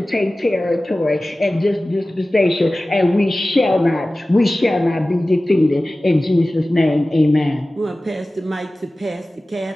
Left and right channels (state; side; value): normal; both; correlation 0.97